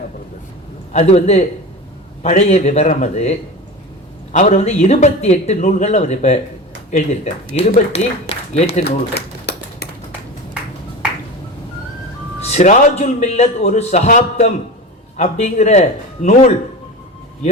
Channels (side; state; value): both; normal; correlation 0.29